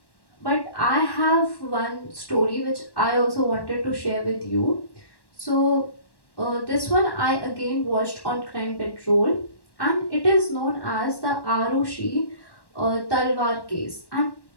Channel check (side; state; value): right; late; 1.1 ms